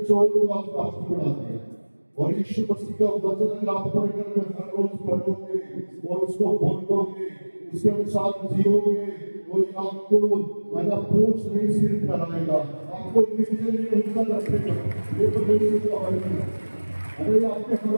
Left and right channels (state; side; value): inverted; both; correlation -1.00